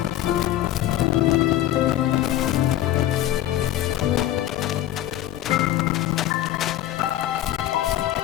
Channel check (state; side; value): quieter; right; 13.0 dB